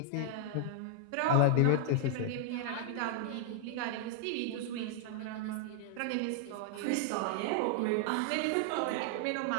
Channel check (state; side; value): different; both; correlation -0.01